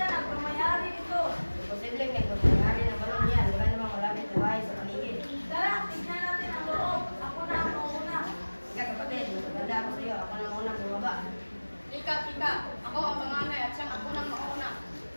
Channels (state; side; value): inverted; both; correlation -1.00